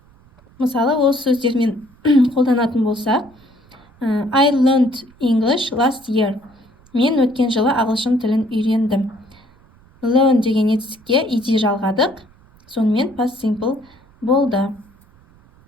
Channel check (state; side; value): noise; right; rumble, 29 dB below the sound